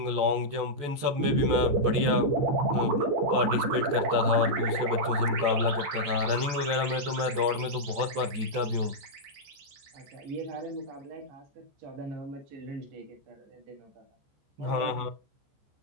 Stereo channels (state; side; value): late; left; 15 ms